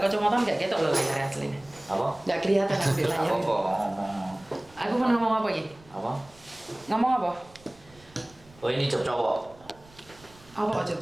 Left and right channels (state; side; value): noise; right; rumble, 25 dB below the sound